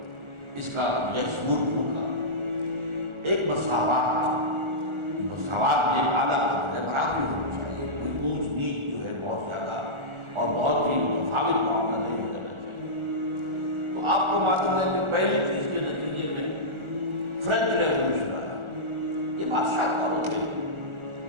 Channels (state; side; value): late; left; 1.4 ms